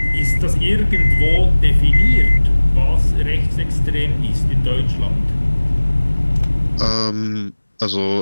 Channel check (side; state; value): both; inverted; correlation -1.00